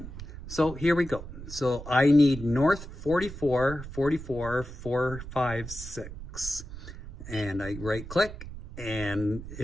So here we go. So I need north 44, 44, 456. And I right click, and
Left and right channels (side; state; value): right; noise; rumble, 11 dB below the sound